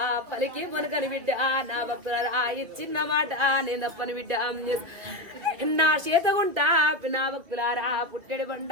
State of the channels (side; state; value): left; late; 2.7 ms